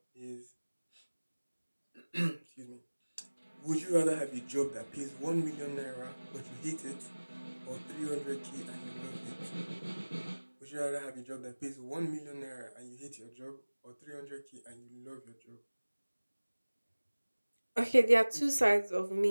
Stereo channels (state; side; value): inverted; both; correlation -1.00